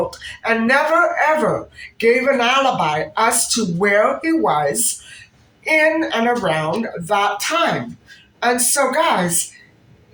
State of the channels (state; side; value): identical; both; correlation 1.00